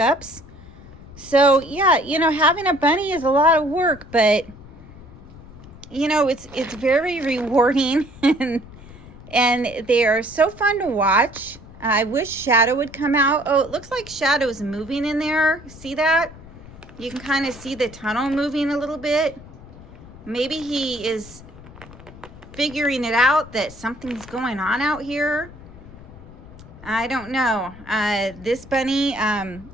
So yeah, you know, having a bunny is a lot of work, but you know, it's very rewarding and they are so fun to watch. I wish Shadow would come out. Oh, it looks like Shadow's moving in there. See that? You can kind of see the tunnel moving a little bit. Maybe he is figuring it out that something's going on out here. I don't know. This bunny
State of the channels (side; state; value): left; noise; rumble, 18 dB below the sound